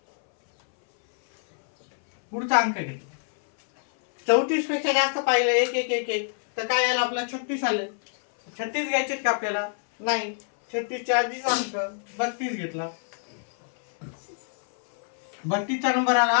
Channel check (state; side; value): silent; right; 58 dB below the other